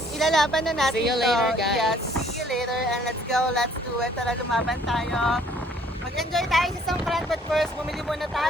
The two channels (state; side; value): normal; both; correlation 0.59